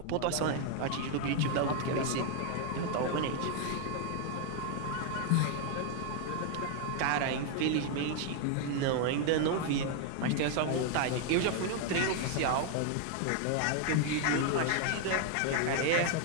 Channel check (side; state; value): both; different; correlation 0.00